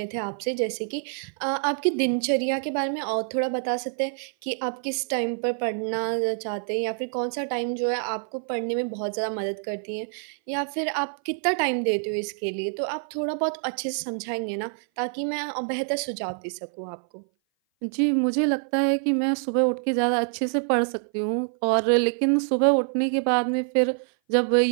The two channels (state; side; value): silent; left; 57 dB below the other